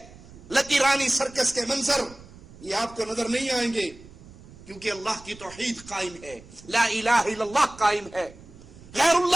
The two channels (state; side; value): noise; right; rumble, 20 dB below the sound